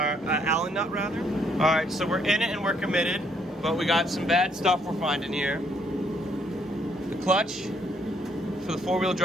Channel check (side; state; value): both; normal; correlation 0.69